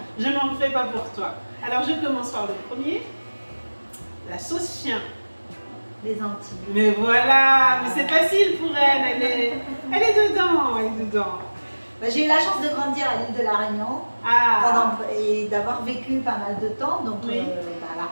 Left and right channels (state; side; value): inverted; both; correlation -1.00